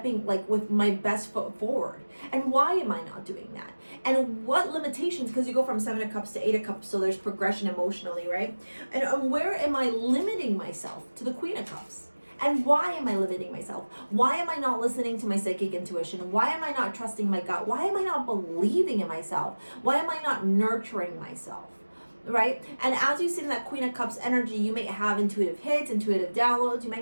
like with my best foot forward? And why am I not doing that? And what limitations, because you go from 7 of Cups to 8 of Cups, so there's progression emotionally, right? And where am I limiting myself to the Queen of Cups? And why am I limiting myself? Why am I not listening to my psychic intuition? Why am I not trusting my gut? Why am I not believing in myself? Why am I not nurturing myself? Right? And as you sit in that Queen of Cups energy, you may have intuitive hits, intuitive downloads. You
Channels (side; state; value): both; inverted; correlation -1.00